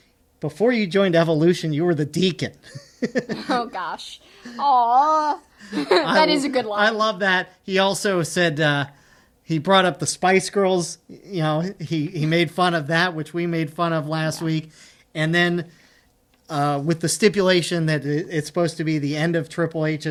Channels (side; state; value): both; identical; correlation 1.00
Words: before you joined Evolution, you were the Deacon. Oh, gosh. Aww. That is a good line. I love that. He also said, he brought up the Spice Girls. He made fun of that, which we made fun of last week. And then with the stipulation that it's supposed to be the end of Triple